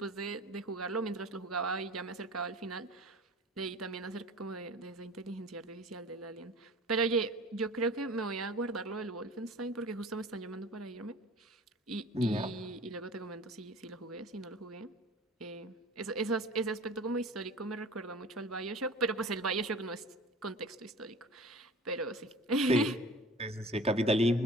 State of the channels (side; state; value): both; normal; correlation 0.42